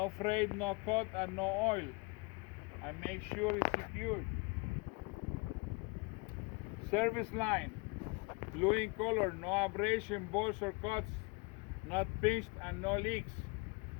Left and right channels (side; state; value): right; quieter; 28.6 dB